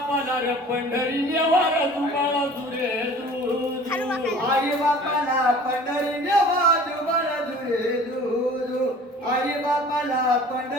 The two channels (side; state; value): both; normal; correlation 0.46